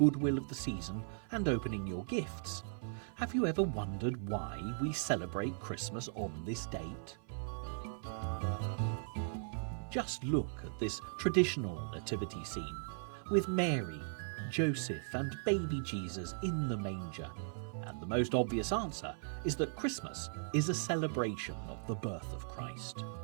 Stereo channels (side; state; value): left; silent; 52 dB below the other